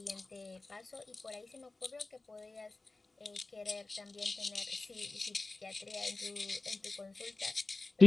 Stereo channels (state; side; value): quieter; right; 3.3 dB